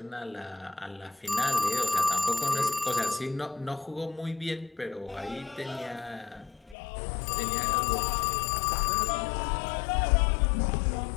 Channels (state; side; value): drops out; right; at 6.8 s